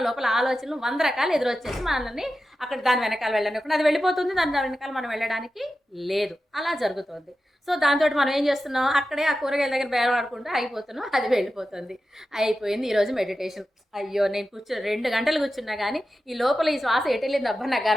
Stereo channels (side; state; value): both; normal; correlation 0.92